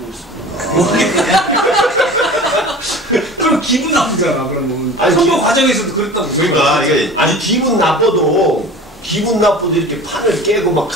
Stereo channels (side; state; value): both; normal; correlation 0.38